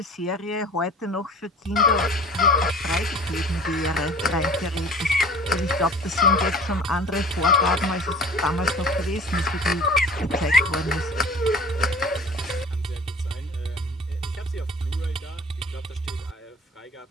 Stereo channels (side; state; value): both; normal; correlation 0.44